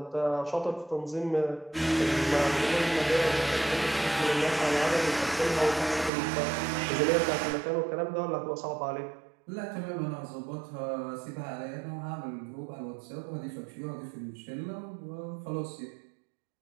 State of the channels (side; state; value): left; drops out; at 6.1 s